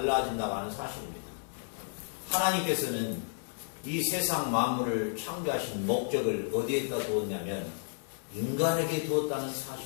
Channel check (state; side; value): silent; right; digital silence